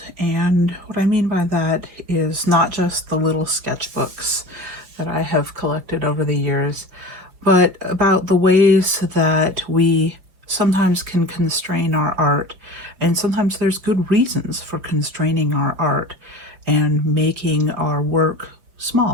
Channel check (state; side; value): late; left; 5.4 ms